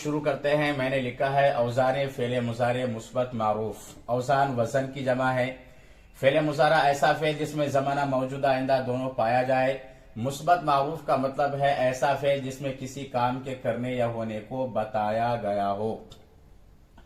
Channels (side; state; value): both; identical; correlation 1.00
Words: करते हैं। मैंने लिखा है औज़ान फ़ेल मुज़ारे मुस्बत मारूफ। औज़ान वज़न की जमा है। फ़ेल मुज़ारा ऐसा फ़ेल जिसमें ज़माना मौजूदा आइंदा दोनों पाया जाए। मुस्बत मारूफ का मतलब है ऐसा फ़ेल जिसमें किसी काम के करने या होने को बताया गया हो।